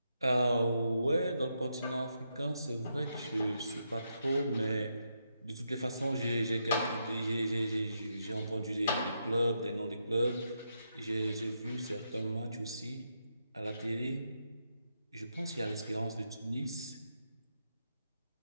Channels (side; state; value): both; inverted; correlation -0.81